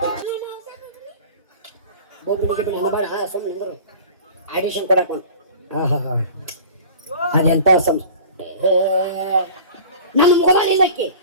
ಆಡಿಷನ್ ಕೊಡಕ ಅದೆಂತ ನಮ್ಮ ಮೊಬೈಲ್ ಇಲ್ಲಕ್ಕೆ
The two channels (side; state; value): both; inverted; correlation -0.40